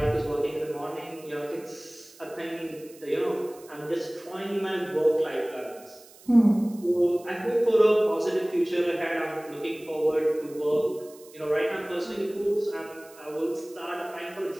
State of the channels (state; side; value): noise; right; hiss, 23 dB below the sound